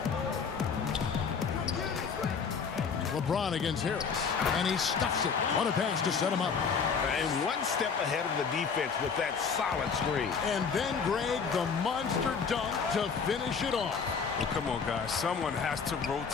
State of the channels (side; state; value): right; quieter; 5.9 dB